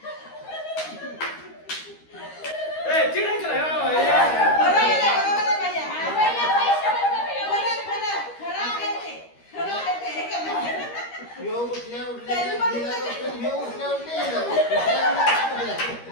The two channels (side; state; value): right; late; 13 ms